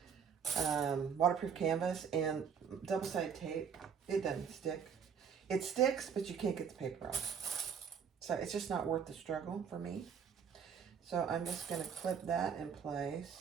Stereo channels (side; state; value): left; quieter; 7.1 dB